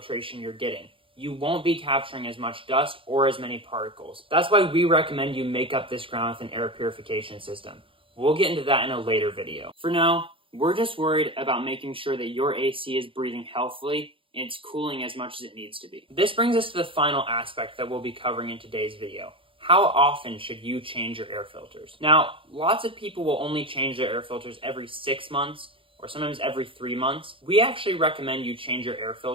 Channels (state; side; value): late; left; 0.25 ms